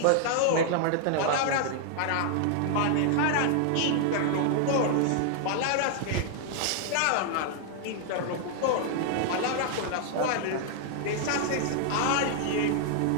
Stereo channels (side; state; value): both; different; correlation 0.00